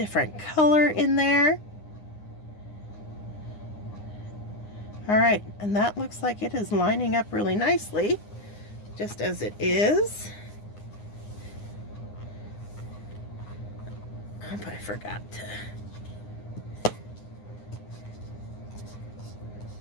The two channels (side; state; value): right; late; 9.7 ms